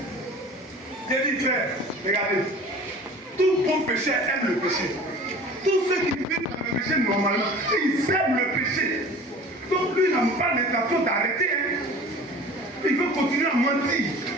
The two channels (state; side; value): normal; both; correlation 0.42